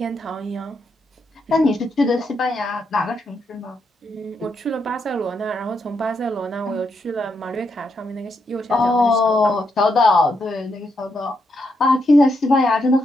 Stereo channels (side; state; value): both; normal; correlation 0.80